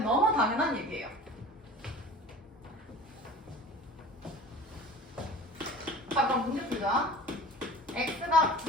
너무 당연한 얘기예요. 자, 그럼 문제 풀자. x가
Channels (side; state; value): both; normal; correlation 0.40